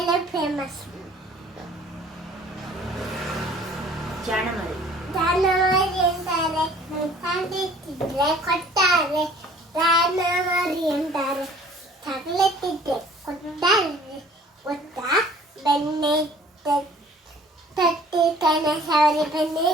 ಫೇಮಸ್. ಜಾಣಮರಿ ಅಂತಾರೆ. ತಂದಿಟ್ಟಿದ್ರೆ ಕೊಡ್ತಾರೆ. ಜಾನಮರಿ ಅಂತಾರೆ. ತಗಲತ್ತಿದ್ರೆ ಕೊಡ್ತಾರೆ. ಗೊತ್ತಾ? ಬೆಣ್ಣೆ ತಟ್ಟಿ ಕಣ ಸವರಿ ಬೆಣ್ಣೆ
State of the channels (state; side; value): normal; both; correlation 0.53